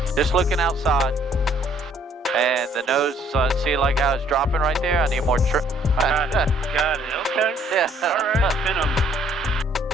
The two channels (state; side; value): normal; both; correlation 0.63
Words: Just looking outside. And the nose, see like how it's dropping right there? I need more got it, okay. Yeah. Alright,